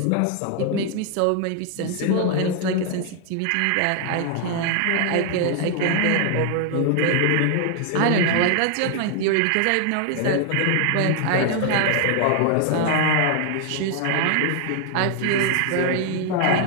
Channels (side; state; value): both; different; correlation 0.00